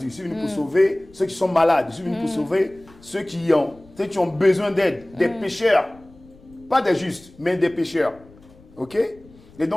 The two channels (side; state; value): left; noise; rumble, 25 dB below the sound